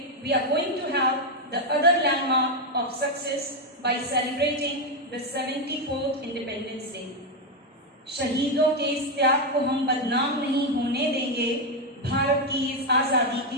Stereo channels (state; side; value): normal; both; correlation 0.05